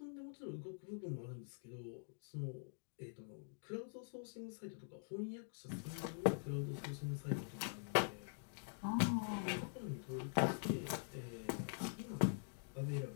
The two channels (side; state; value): right; silent; digital silence